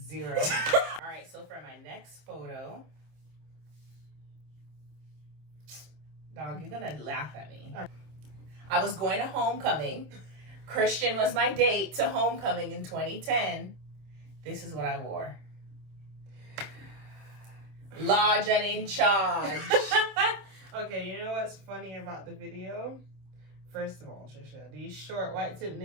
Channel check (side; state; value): left; late; 26 ms